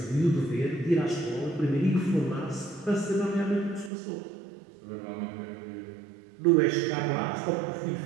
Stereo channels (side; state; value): left; drops out; at 3.9 s